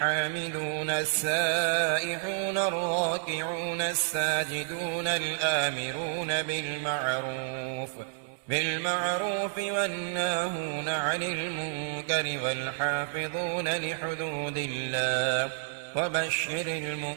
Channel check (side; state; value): left; silent; digital silence